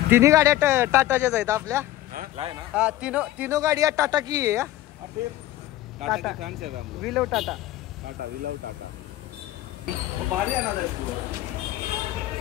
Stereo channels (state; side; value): quieter; right; 14.9 dB